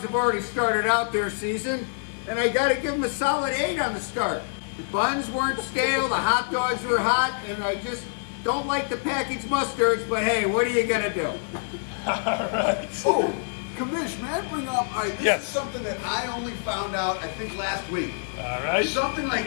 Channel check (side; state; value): right; silent; digital silence